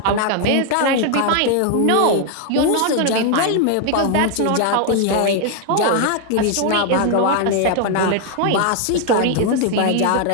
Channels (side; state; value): both; different; correlation 0.00